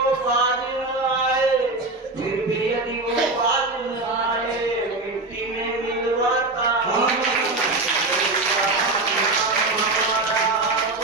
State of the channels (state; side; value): quieter; left; 3.2 dB